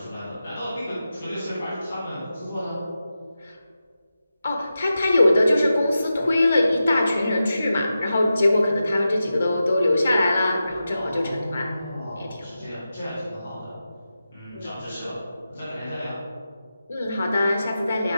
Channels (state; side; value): inverted; both; correlation -0.91